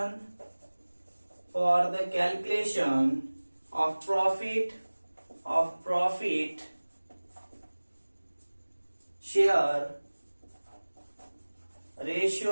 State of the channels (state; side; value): inverted; both; correlation -1.00